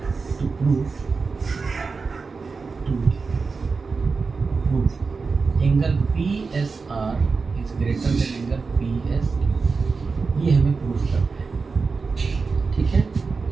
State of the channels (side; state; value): left; quieter; 4.6 dB